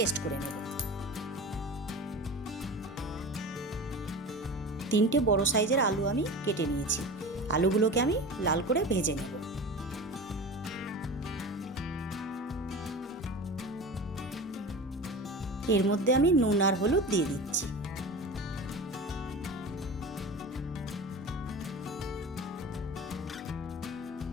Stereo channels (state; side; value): normal; both; correlation 0.32